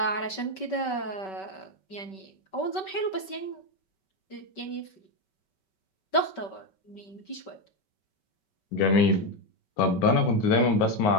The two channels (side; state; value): right; late; 5.2 ms